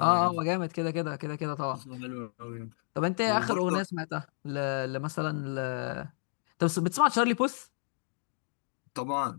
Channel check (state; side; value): silent; right; 57 dB below the other